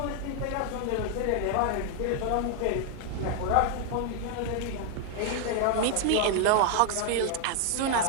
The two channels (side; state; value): both; different; correlation 0.00